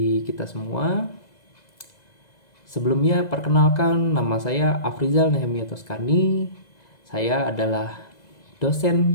kita semua. Sebelumnya perkenalkan, nama saya Afrizal Nehemia Toskani. Saya adalah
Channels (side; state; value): right; late; 2.0 ms